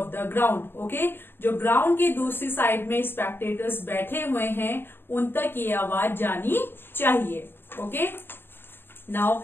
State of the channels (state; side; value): late; right; 0.10 ms